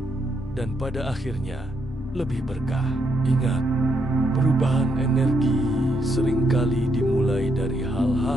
dan pada akhirnya lebih berkah. Ingat, perubahan energi seringkali dimulai dari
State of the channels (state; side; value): normal; both; correlation 0.77